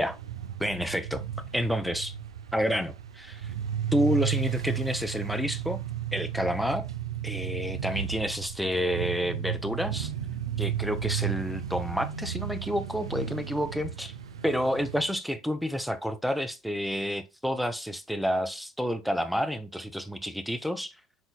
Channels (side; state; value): both; normal; correlation 0.69